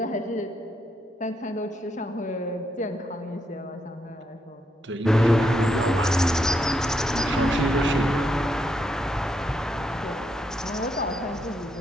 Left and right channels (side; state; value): both; normal; correlation 0.79